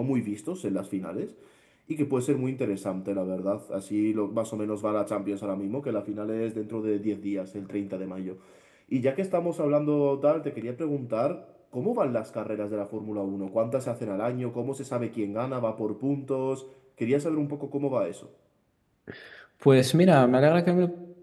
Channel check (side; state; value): both; identical; correlation 1.00